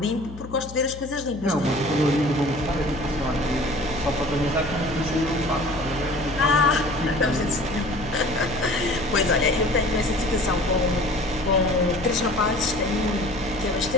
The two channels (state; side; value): noise; left; hum, 14 dB below the sound